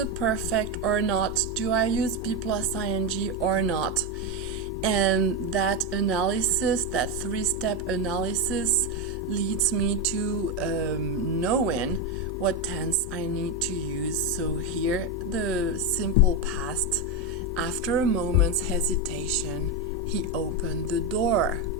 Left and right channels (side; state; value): right; noise; rumble, 30 dB below the sound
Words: perfect or not? Do I use be plus ing or not? And that analysis, that three-step analysis, leads me to knowing what tense I need to use. So here, the simple past. After a moment's hesitation, he opened the door.